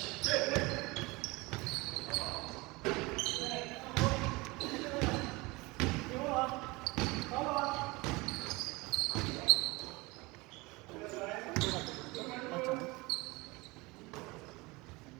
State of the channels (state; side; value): quieter; left; 23.7 dB